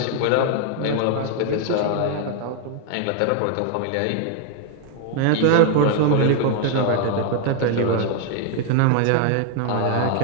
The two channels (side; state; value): both; different; correlation 0.00